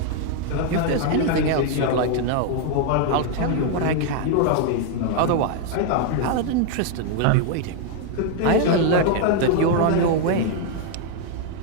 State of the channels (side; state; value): both; different; correlation 0.00